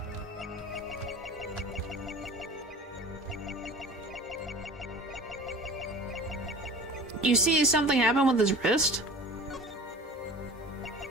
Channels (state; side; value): normal; both; correlation 0.41